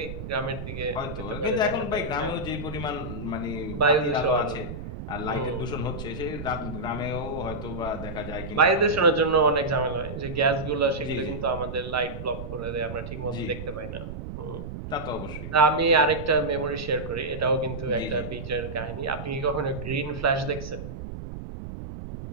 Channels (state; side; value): noise; right; rumble, 9 dB below the sound